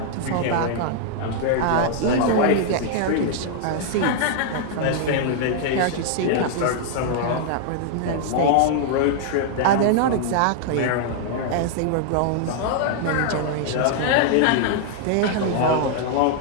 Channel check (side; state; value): both; different; correlation -0.01